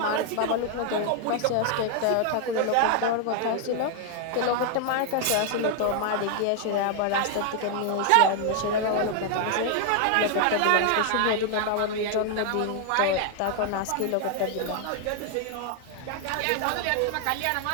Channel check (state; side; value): different; both; correlation 0.00